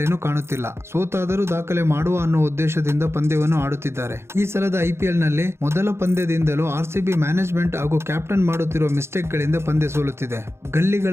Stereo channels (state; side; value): late; left; 0.12 ms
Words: ಕಾಣುತ್ತಿಲ್ಲ. ಸೋತಾದರೂ ದಾಖಲೆ ಮಾಡುವ ಅನ್ನೋ ಉದ್ದೇಶದಿಂದ ಪಂದ್ಯವನ್ನು ಆಡುತ್ತಿದ್ದಾರೆ. ಈ ಸಲದ ಐಪಿಎಲ್ ನಲ್ಲಿ ಮೊದಲ ಪಂದ್ಯದಿಂದಲೂ ಆರ್ಸಿಬಿ ಮ್ಯಾನೇಜ್ಮೆಂಟ್ ಹಾಗೂ ಕ್ಯಾಪ್ಟನ್ ಮಾಡುತ್ತಿರುವ ಮಿಸ್ಟೇಕ್ ಗಳಿಂದ ಪಂದ್ಯ ಸೋಲುತ್ತಿದೆ.